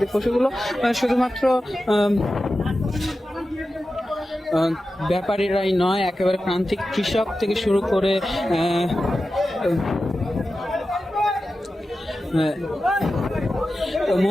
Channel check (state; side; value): normal; both; correlation 0.93